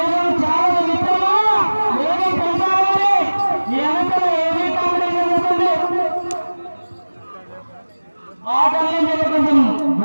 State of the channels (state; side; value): inverted; both; correlation -1.00